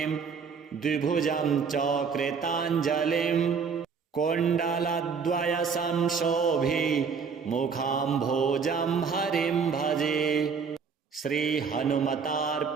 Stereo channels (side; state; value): left; quieter; 5.8 dB